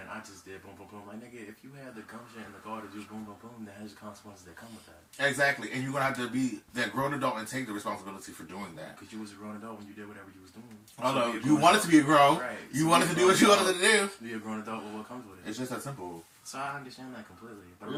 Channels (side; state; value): both; identical; correlation 1.00